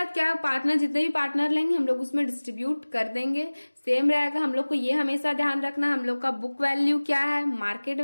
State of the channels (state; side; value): inverted; both; correlation -1.00